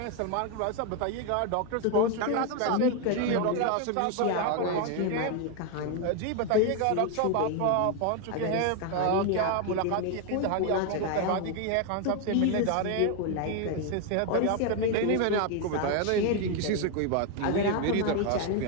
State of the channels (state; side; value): different; both; correlation 0.01